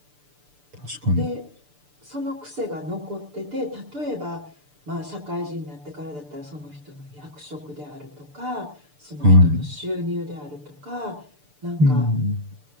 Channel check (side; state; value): left; late; 6.8 ms